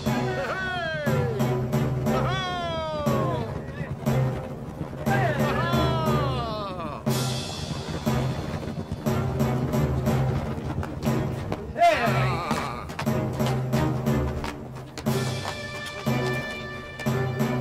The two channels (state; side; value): identical; both; correlation 1.00